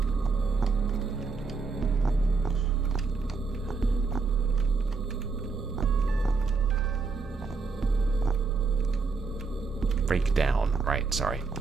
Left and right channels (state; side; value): quieter; left; 4.5 dB